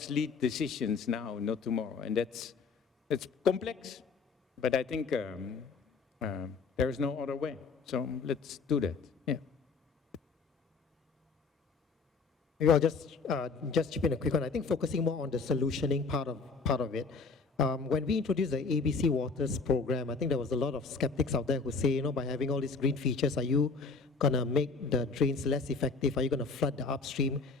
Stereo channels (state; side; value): quieter; right; 4.6 dB